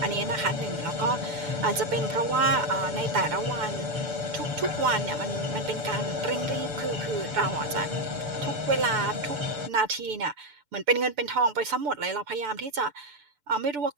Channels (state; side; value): late; left; 6.9 ms